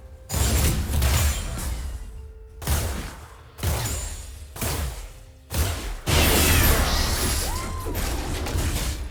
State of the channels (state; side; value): identical; both; correlation 1.00